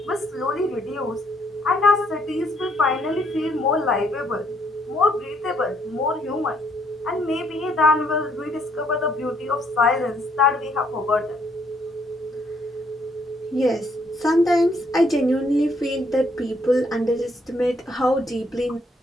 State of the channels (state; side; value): normal; both; correlation 0.69